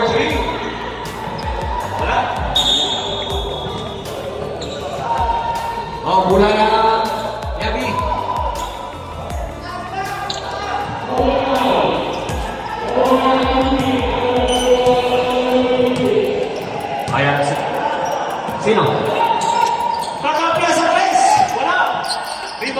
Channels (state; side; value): identical; both; correlation 1.00